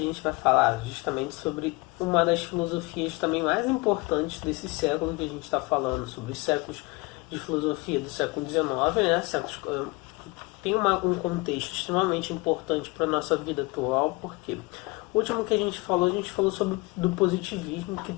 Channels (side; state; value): right; quieter; 25.6 dB